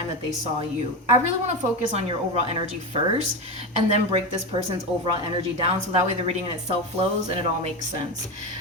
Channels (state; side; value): normal; both; correlation 0.18